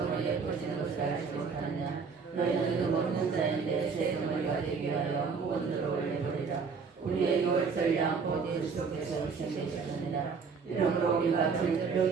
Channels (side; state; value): left; quieter; 5.4 dB